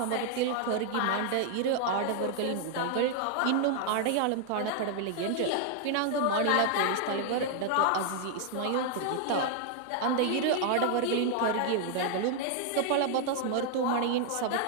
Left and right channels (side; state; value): both; different; correlation 0.00